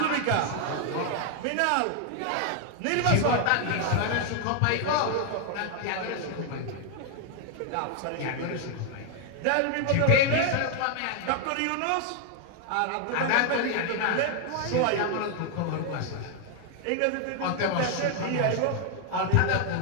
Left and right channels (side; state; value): both; different; correlation 0.00